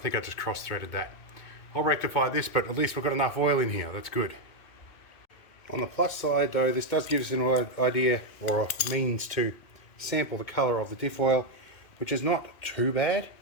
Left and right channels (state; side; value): late; right; 2.2 ms